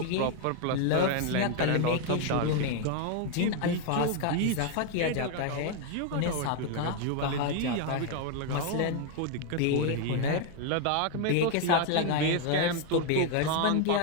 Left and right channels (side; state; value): both; different; correlation 0.01